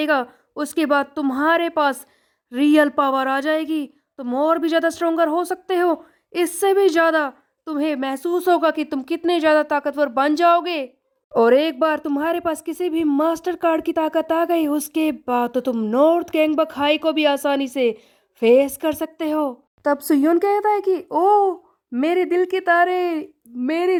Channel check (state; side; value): identical; both; correlation 1.00